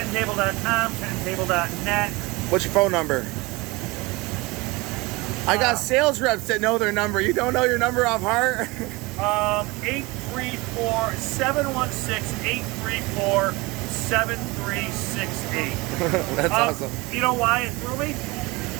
tenttable.net. What's your phone number? I got sales reps that know their number. You don't know your number off heart? 834-716-834-7368. That's awesome. You know why it threw me?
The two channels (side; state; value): left; quieter; 23.7 dB